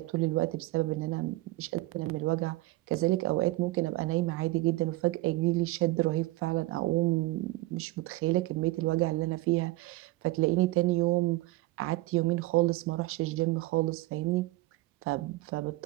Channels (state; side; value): quieter; left; 19.3 dB